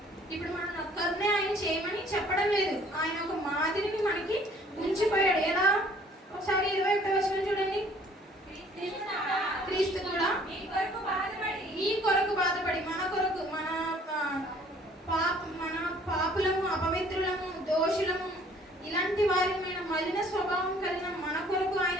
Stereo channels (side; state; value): both; normal; correlation 0.57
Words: ఇప్పుడు మనం ఒక్కరినే ఆయన చేయమని చెప్పడం లేదు, ఆయన ఒక మాదిరిని మనకి ఉంచిపోయాడు. ఎలా? ఒకసారి 21వ వచనం చూడండి. క్రీస్తు కూడా మీ కొరకు బాధపడి, మన కొరకు, మన పాపులము, అపవిత్రులము, దోషులము, ఇలాంటి వారిమైన మలిన స్వభావం కలిగిన మన కొరకు ఆయన